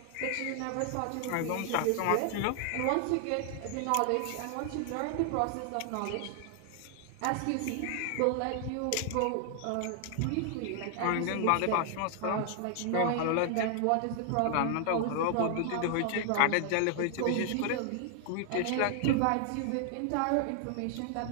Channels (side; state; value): both; different; correlation 0.00